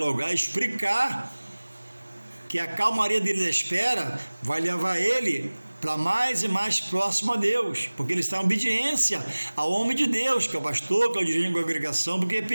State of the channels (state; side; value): inverted; both; correlation -1.00